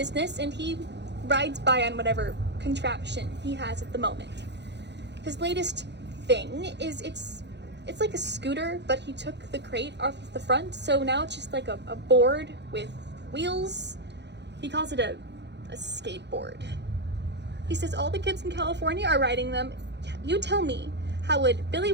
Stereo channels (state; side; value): late; left; 0.50 ms